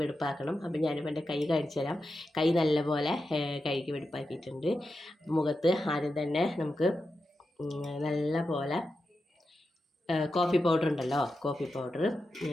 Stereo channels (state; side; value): normal; both; correlation 0.90